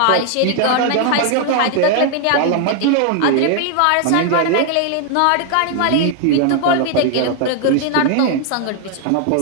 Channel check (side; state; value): both; different; correlation 0.00